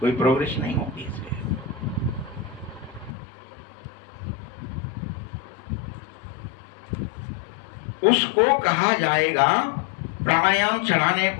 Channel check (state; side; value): drops out; right; at 3.1 s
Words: कोई प्रोग्रेस नहीं होती इसलिए। उसको कहा जाएगा, प्राणायाम चलाने